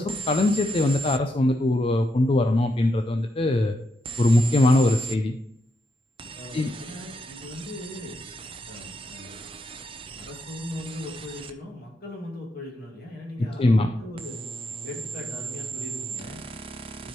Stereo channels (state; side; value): normal; both; correlation 0.81